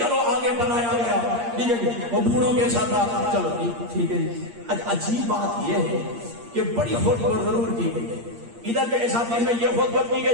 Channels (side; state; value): left; late; 8.6 ms